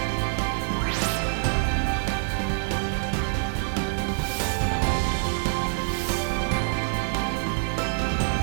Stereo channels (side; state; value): left; silent; digital silence